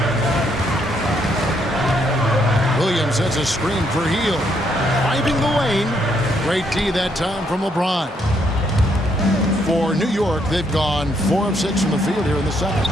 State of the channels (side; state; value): both; normal; correlation 0.73